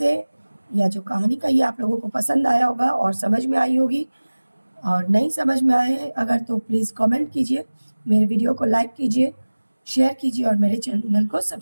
या जो कहानी कही आप लोगों को पसंद आया होगा और समझ में आई होगी, और नहीं समझ में आए अगर तो प्लीज़ कमेंट कीजिए, मेरे वीडियो को लाइक कीजिए, शेयर कीजिए और मेरे चैनल को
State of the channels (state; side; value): inverted; both; correlation -1.00